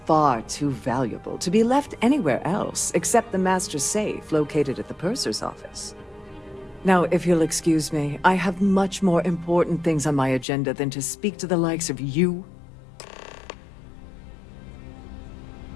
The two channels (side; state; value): right; drops out; at 10.5 s